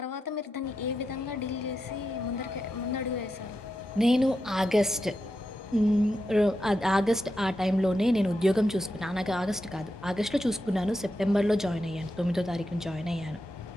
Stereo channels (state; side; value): normal; both; correlation 0.87